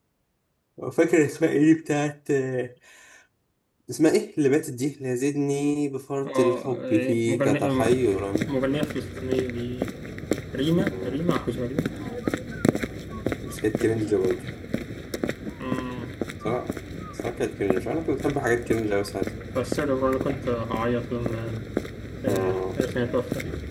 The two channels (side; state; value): both; identical; correlation 1.00